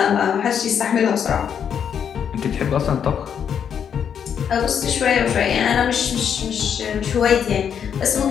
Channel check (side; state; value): right; quieter; 7.9 dB